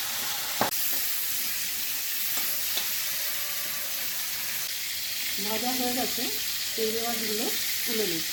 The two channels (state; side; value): identical; both; correlation 1.00